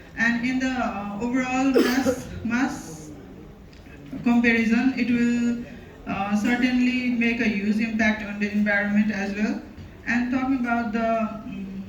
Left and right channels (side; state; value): both; identical; correlation 1.00